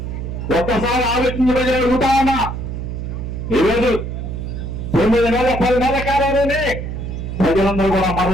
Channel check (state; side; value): noise; right; hum, 6 dB below the sound